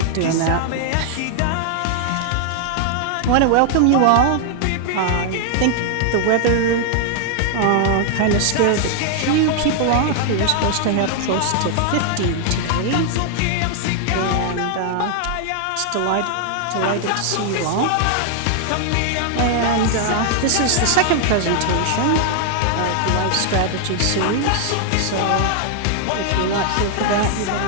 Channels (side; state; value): both; different; correlation 0.00